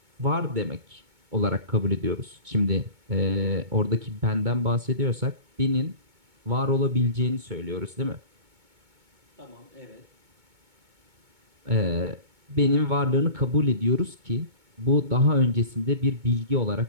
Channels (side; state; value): left; late; 2.2 ms